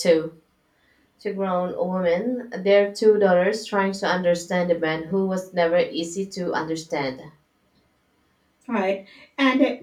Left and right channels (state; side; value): identical; both; correlation 1.00